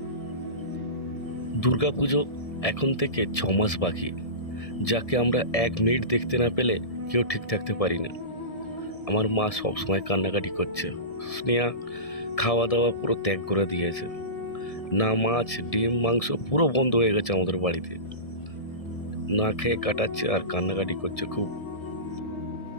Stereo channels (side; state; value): right; late; 1.7 ms